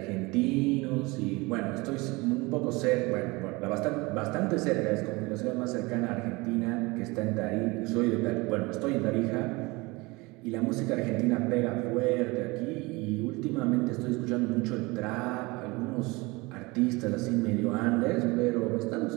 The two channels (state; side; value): quieter; left; 24.1 dB